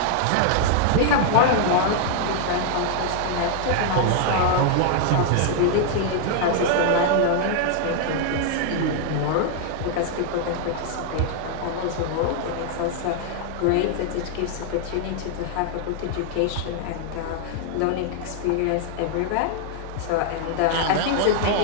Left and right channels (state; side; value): different; both; correlation 0.00